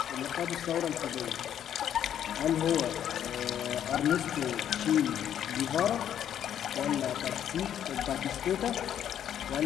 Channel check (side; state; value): right; quieter; 9.9 dB